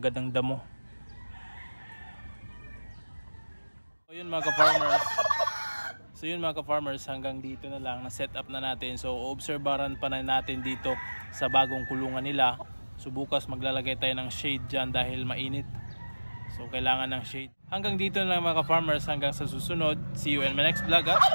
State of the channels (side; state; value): both; inverted; correlation -1.00